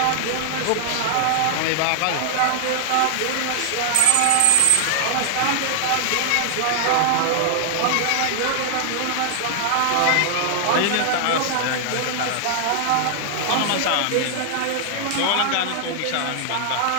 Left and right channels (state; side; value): different; both; correlation 0.00